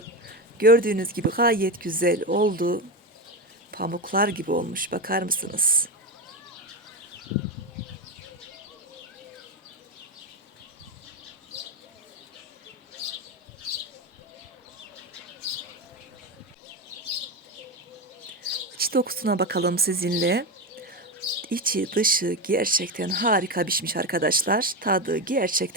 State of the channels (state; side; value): normal; both; correlation 0.16